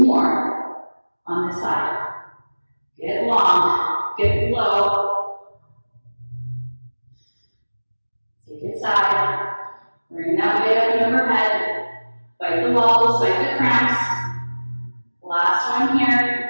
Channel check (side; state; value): both; inverted; correlation -1.00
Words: on this side. Get long, get low. Take it side, bring that weight up and overhead, fight the walls, fight the cramps. Last one here.